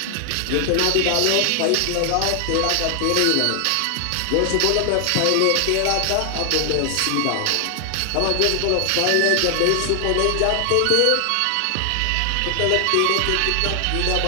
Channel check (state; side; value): different; both; correlation 0.00